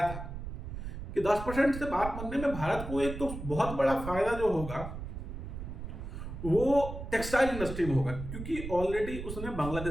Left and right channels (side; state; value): right; noise; rumble, 8 dB below the sound